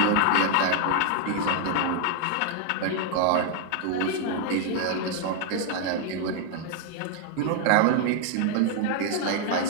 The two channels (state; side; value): different; both; correlation 0.00